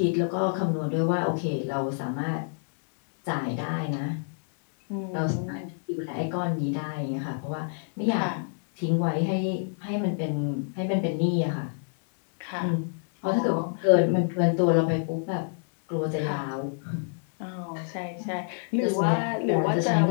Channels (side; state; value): right; silent; digital silence